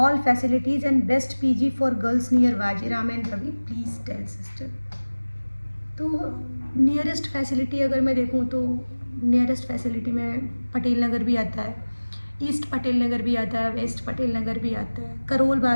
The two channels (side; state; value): both; inverted; correlation -1.00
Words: facilities and best PG for girls near Vajiram and Ravi, please tell sister. तो नियरेस्ट फैसिलिटी अगर मैं देखूँ तो नियरेस्ट फैसिलिटी में पटेल नगर भी आता है, ईस्ट पटेल नगर भी आता है, वेस्ट पटेल नगर भी आता है, करोल